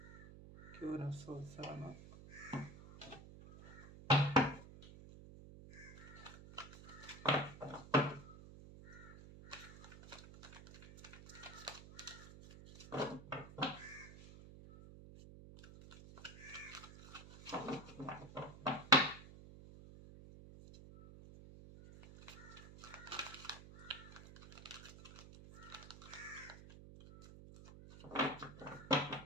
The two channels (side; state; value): right; noise; hum, 15 dB below the sound